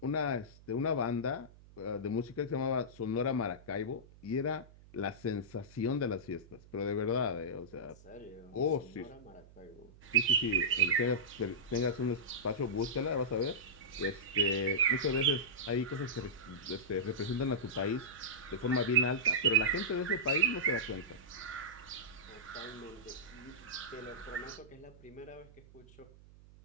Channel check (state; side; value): noise; right; hum, 22 dB below the sound